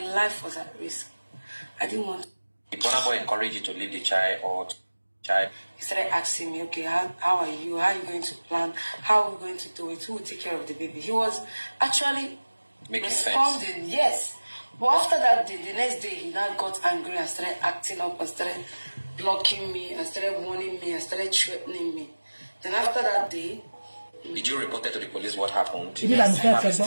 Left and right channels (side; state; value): both; inverted; correlation -1.00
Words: life was at risk. I didn't want to. Did Burna Boy encourage you to leave the child or child? He started asking me, okay, how are you? How are you going to plan? How are we going to do it? Who will take care of the baby? He was actually Making responding, sense. yes. But after that day, the next day, he now got angry and started acting up and started blocking me and started warning me and started threatening me. Then after that day, did you report to the police what happened? Did you Yes, have a a